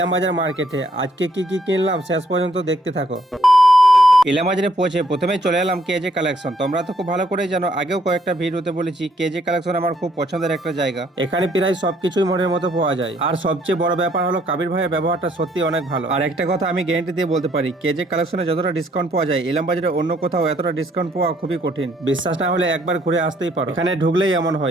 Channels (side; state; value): both; normal; correlation 0.68